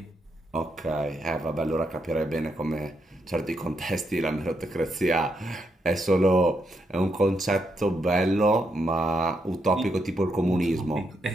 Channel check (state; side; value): normal; both; correlation 0.80